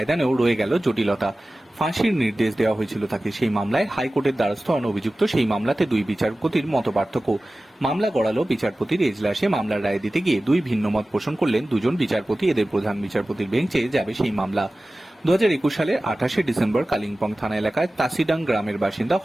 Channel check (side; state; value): both; normal; correlation 0.96